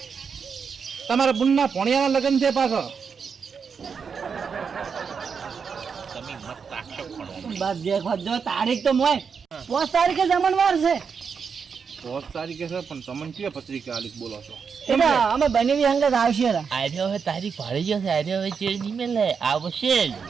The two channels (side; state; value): left; quieter; 6.1 dB